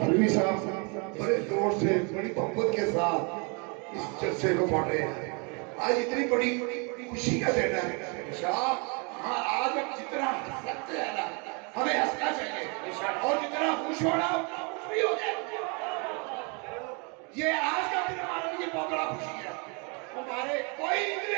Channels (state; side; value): quieter; left; 33.8 dB